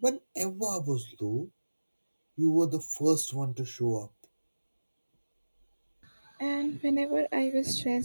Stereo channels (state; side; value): inverted; both; correlation -1.00